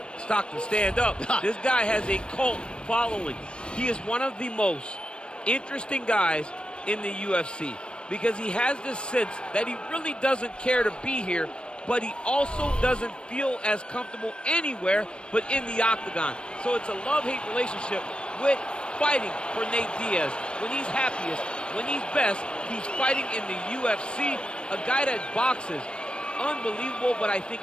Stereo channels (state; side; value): late; right; 0.056 ms